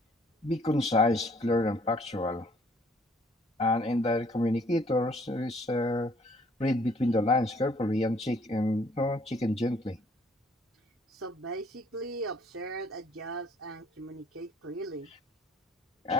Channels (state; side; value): normal; both; correlation 0.61